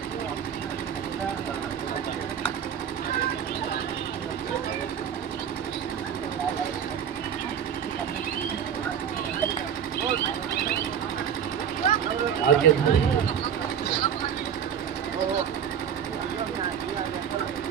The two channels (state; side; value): quieter; left; 8.4 dB